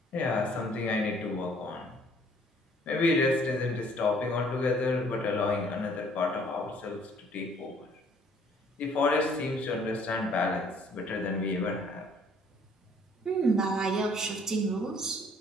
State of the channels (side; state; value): both; normal; correlation 0.59